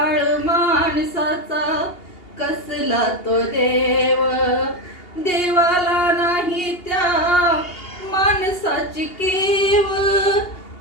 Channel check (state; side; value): late; right; 2.8 ms